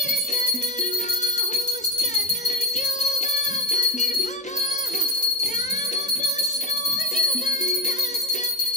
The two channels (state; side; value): normal; both; correlation 0.17